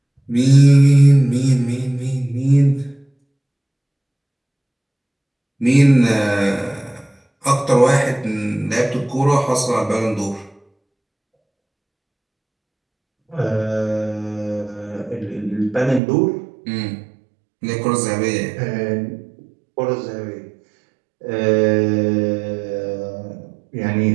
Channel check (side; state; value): left; drops out; at 16.0 s